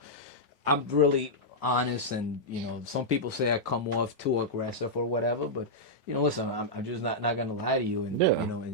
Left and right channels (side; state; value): both; normal; correlation -0.08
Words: I'm really honest, and some people say I come off too aggressive or whatever, but listen, I'm just not gonna lie to you, and